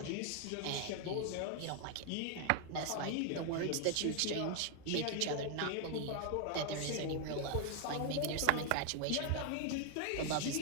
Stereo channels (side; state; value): both; different; correlation 0.00